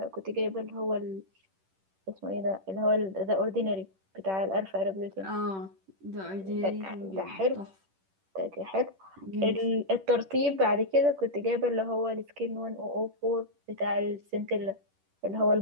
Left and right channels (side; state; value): left; late; 10 ms